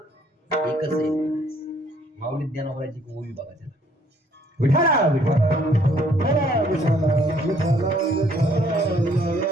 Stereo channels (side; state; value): both; normal; correlation 0.63